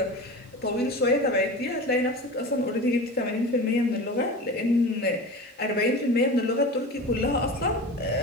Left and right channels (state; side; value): normal; both; correlation 0.31